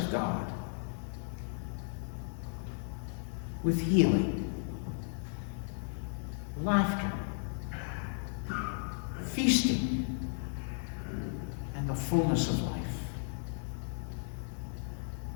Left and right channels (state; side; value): silent; right; 54 dB below the other